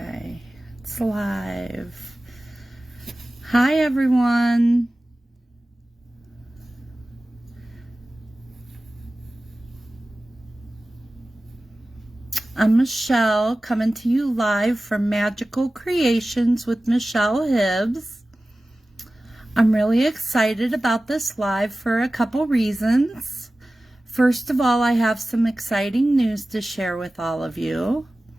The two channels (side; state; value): both; normal; correlation 0.96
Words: it's live. Hi, everyone. I'm Michelle, coming to you live from Magical Creations with Michelle Hibbs. I'm really excited about this live for a couple reasons. First of all, I have some exciting news to share with all of you.